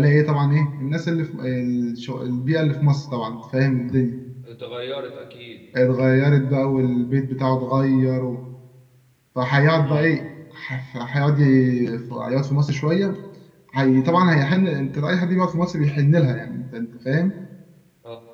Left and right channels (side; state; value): both; identical; correlation 1.00